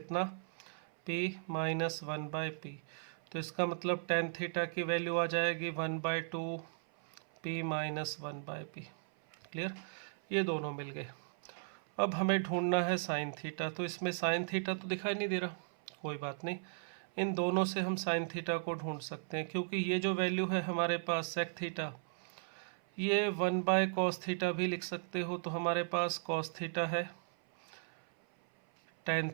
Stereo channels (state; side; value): silent; left; 53 dB below the other